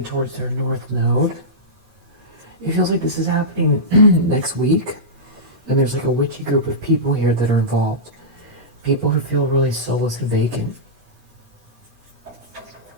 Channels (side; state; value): left; late; 9.3 ms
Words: towards their north node. It feels like this is happening next week. And there's like a witchy group of people here that are involved. People who feel really soulless and vacant.